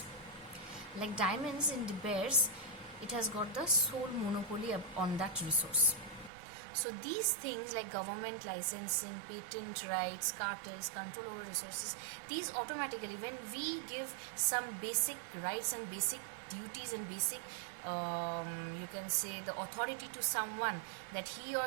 Like diamonds in De Beers, it has got the sole monopoly on that resource. So these things like government licensing, patent rights, cartels, control over resources, these automatically, when we give some basic rights and basic duties and basic you can say the authority to someone that he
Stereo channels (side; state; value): left; drops out; at 6.3 s